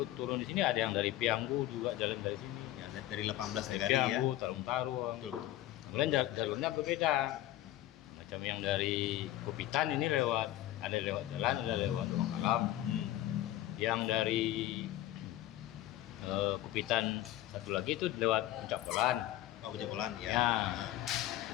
turun di sini ada yang dari Pianggu juga jalan dari sini. Ya, dari 18 negara ya. Pianggu, Tarung-Tarung. Betul. Kemudian jalurnya berbeda. Macam yang dari Kupitan ini lewat, ada lewat jalan, ada lewat ruang alam. Yang dari Kupitan satu lagi itu lewat Puncak Polan. Oh, Pejabolan ya. Ya.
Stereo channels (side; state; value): right; quieter; 14.5 dB